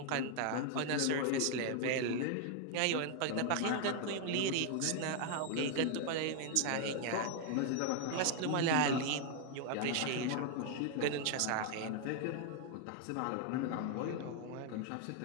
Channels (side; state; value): both; different; correlation 0.00